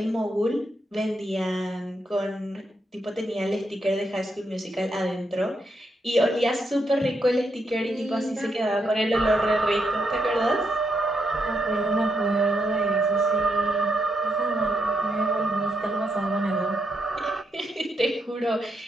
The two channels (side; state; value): both; normal; correlation 0.80